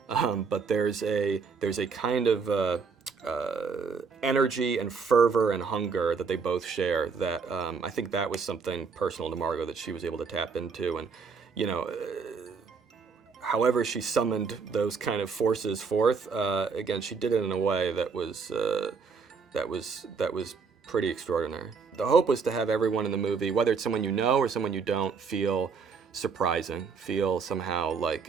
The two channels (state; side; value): quieter; left; 5.3 dB